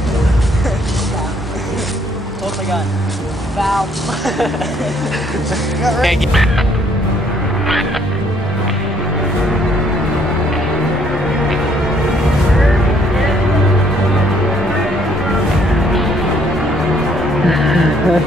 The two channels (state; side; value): normal; both; correlation 0.66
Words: Hold my gun. Foul.